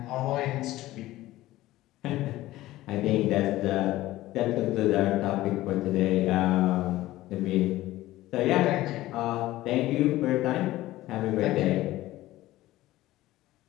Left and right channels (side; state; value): right; quieter; 16.4 dB